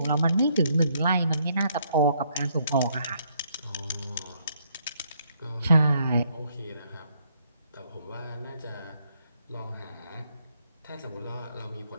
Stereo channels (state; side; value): inverted; both; correlation -0.71